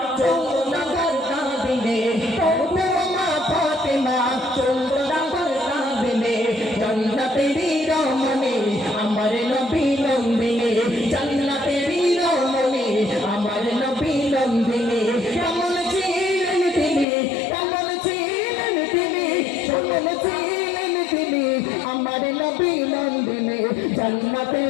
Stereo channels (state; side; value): drops out; right; at 17.1 s